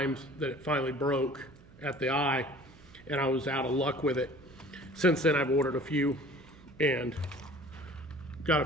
that it finally broke at the eye and I was out of luck with it. Since then I've ordered a few and got a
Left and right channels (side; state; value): right; noise; hum, 24 dB below the sound